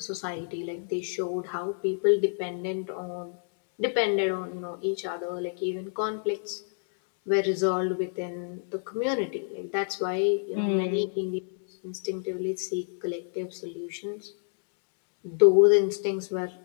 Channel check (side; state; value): right; silent; digital silence